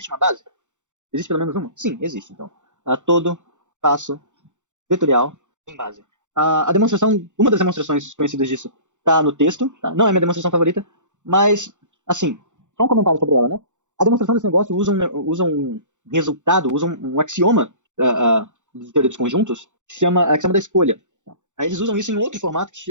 uma base? Existe pelo menos uma? Sim, existe. Então, todo espaço vetorial tem base. Uma das demonstrações conhecidas disso está no texto. Tá? Não é minha demonstração favorita, mas, assim, só um comentário sobre ela, né? A demonstração desse negócio usa um resultado, usa um axioma de teoria dos conjuntos, que se chama axioma da escolha. Aí eles usam isso em outro formato,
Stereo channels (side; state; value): left; late; 0.85 ms